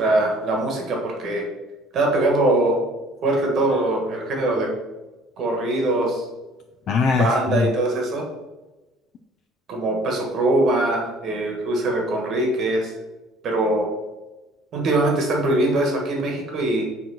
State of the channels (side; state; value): both; normal; correlation 0.54